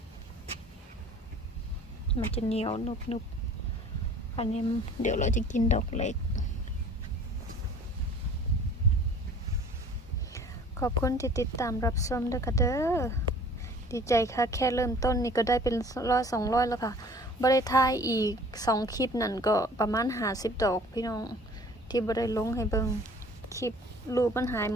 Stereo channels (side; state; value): both; normal; correlation 0.49